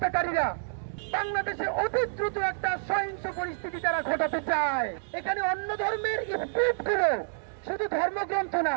বাংলাদেশে অতি দ্রুত একটা সহিংস পরিস্থিতি তারা ঘটাতে চায়। এখানে অন্য ধর্মের স্পিরিট গুলো শুধু ধর্মগ্রন্থ না,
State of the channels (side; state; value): left; silent; digital silence